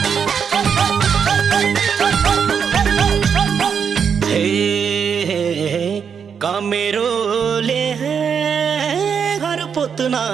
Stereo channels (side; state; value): left; quieter; 6.9 dB